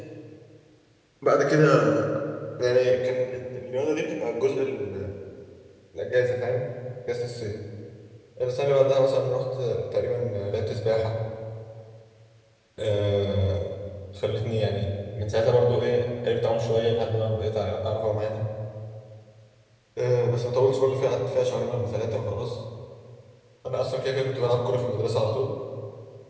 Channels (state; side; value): identical; both; correlation 1.00